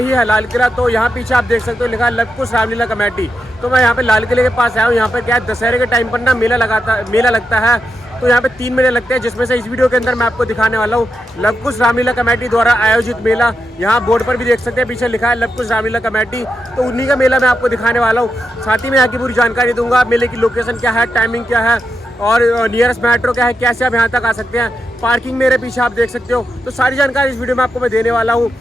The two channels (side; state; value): both; normal; correlation 0.86